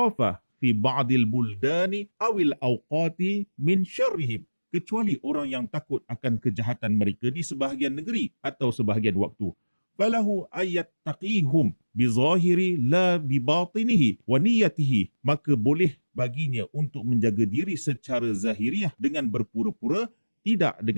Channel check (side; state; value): both; inverted; correlation -1.00